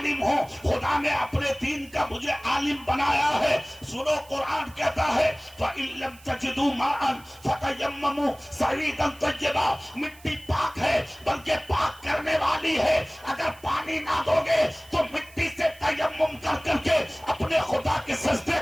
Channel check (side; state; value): right; noise; hiss, 24 dB below the sound